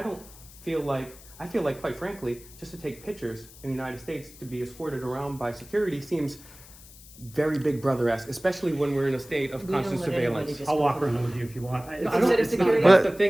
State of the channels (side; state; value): left; noise; hiss, 20 dB below the sound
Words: feel like, quite frankly, just to take pictures in the United States, to be escorted around by security seems very Big Brother-esque, especially when we're in a state of We don't constant let anybody surveillance. just I'll go walk through. around with you if you want. No, It's I don't, Instead of it's not, security- that's the